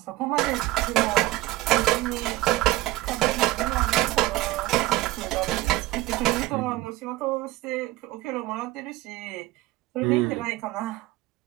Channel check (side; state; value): left; quieter; 17.7 dB